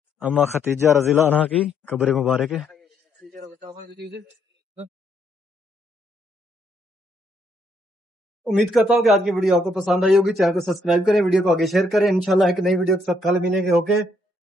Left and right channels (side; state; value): both; normal; correlation 0.72